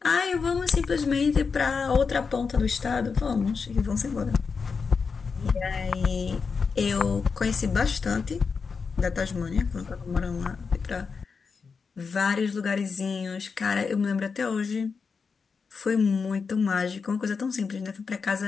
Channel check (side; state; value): right; quieter; 5.2 dB